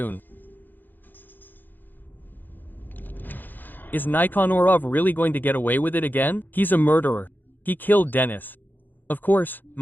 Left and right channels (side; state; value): right; late; 0.089 ms